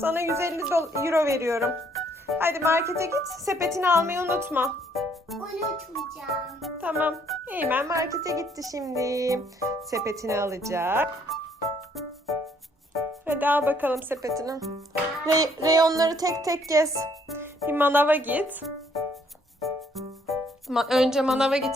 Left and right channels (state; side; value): normal; both; correlation 0.66